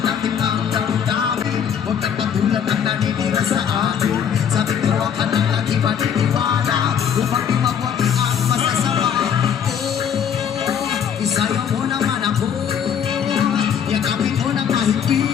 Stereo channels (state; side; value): quieter; right; 8.1 dB